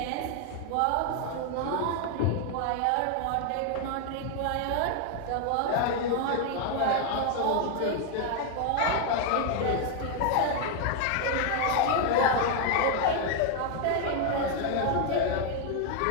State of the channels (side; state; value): both; different; correlation 0.00